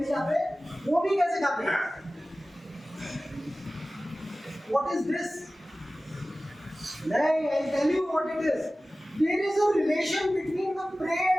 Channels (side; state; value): both; normal; correlation 0.97